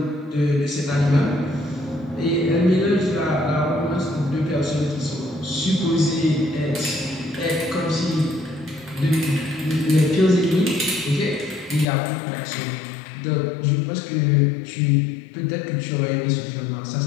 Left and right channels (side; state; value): right; drops out; at 11.9 s